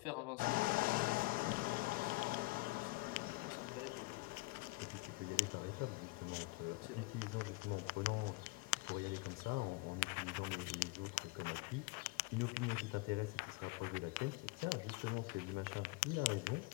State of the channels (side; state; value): right; quieter; 25.2 dB